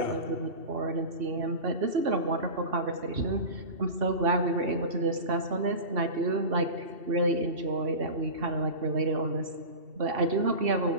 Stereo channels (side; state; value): left; late; 2.7 ms